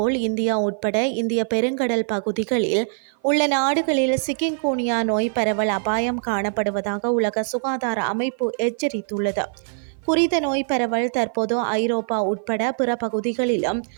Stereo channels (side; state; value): left; silent; 55 dB below the other